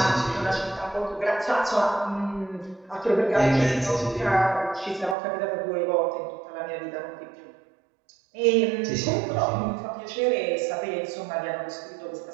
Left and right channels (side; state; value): left; drops out; at 5.2 s